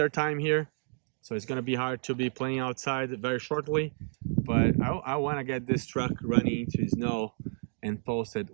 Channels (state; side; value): silent; left; digital silence